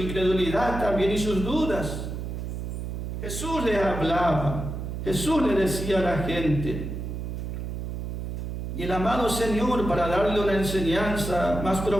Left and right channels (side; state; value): right; noise; hum, 5 dB below the sound